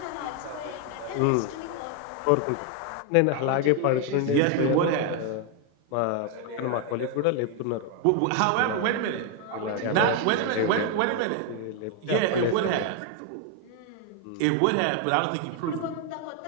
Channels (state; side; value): different; both; correlation 0.01